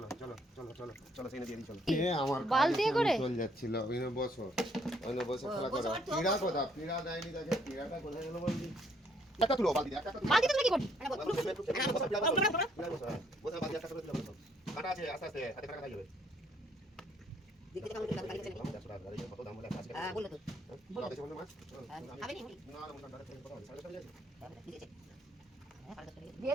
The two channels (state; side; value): normal; both; correlation 0.67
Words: চলো চলো চলো চলো সেই দিয়ে চলো আমার বালতি করে চল যাচ্ছিল বসো খেলা করো পীড়া কথা পীড়া দেয়নি তাকে পীড়াটা কোথায় গেল বলবি একটা তুলো বালতি একটা বালতি তুমি কি করবে বসে বালতি একটা করে তুলো কাটা আছে আস্তে আস্তে হাতে কাটা খাই যাবে দেখতে কেমন লাগে লাগে কত দাম বলে আজকে হ্যাঁ বললো তো বলো বেশি বললে মাছ খাবে নি না না মোটা ডাইরেক্ট কথা সাড়ে সাড়ে